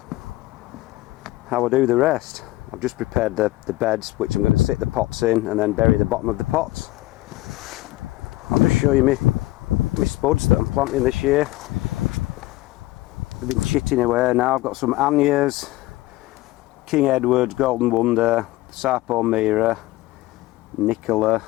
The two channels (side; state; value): right; quieter; 18.1 dB